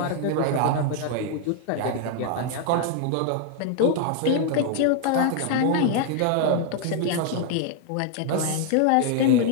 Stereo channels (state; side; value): different; both; correlation 0.00